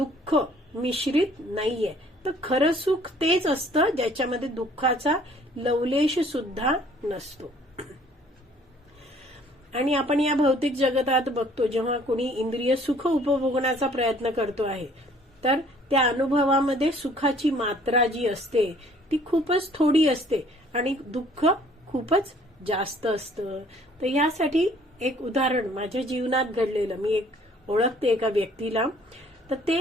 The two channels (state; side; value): normal; both; correlation 0.57